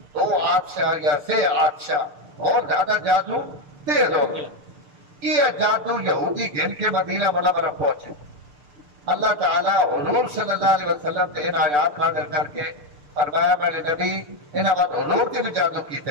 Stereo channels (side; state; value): left; late; 6.8 ms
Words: 2 آدشاہ یا 6 آدشاہ اور زیادہ جادو تیز ہو گئے یہ جادو یہودی گھن کے مدینہ منورہ پہنچے اللہ تعالیٰ حضور صلی اللہ علیہ وسلم سے ان آیات نازل کر کے فرمایا میرے نبی انہاں بعد حضور کی بھی جادو